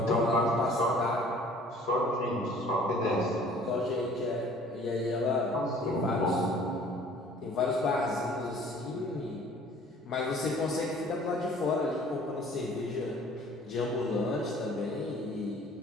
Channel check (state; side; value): normal; both; correlation 0.52